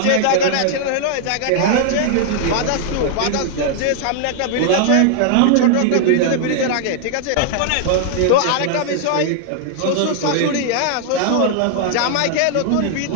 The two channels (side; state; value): both; different; correlation -0.01